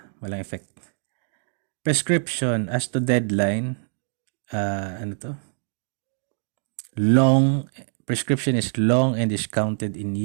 Walang effect. Prescription as to deadline, prescription is long and is counted in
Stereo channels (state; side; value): silent; left; digital silence